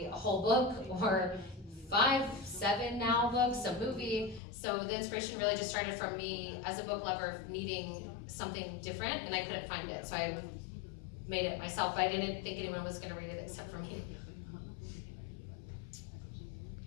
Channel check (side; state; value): right; drops out; at 4.4 s